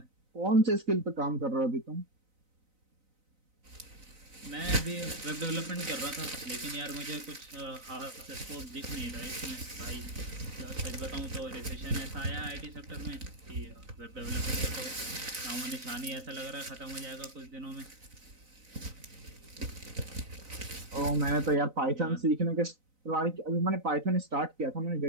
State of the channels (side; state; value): left; late; 3.9 ms